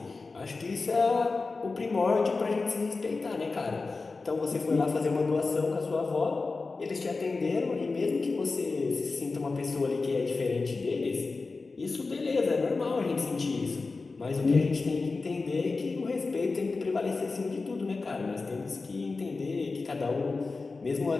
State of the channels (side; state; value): right; quieter; 3.9 dB